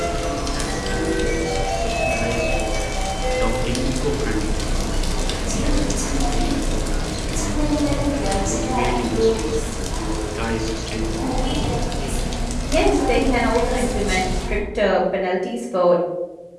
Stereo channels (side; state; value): both; identical; correlation 1.00